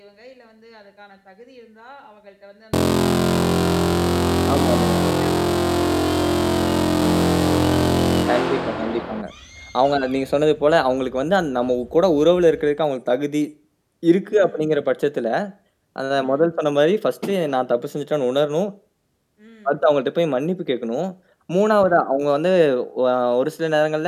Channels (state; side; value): identical; both; correlation 1.00